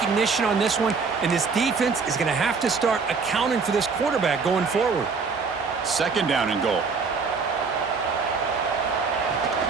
on this one, and this defense is going to have to start accounting for this quarterback going forward. Second down and goal.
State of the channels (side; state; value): left; quieter; 5.0 dB